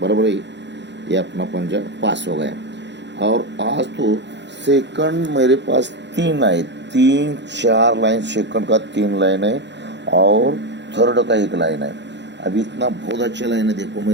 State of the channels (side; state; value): left; late; 0.52 ms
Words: बराबर है, ये अपना पंजा पास हो गया। और आज तो सेकंड मेरे पास 3 आए, 3-4 लाइन सेकंड का 3 लाइन है और थर्ड का 1 लाइन है। अभी इतना बहुत अच्छा लाइन है। देखो मैं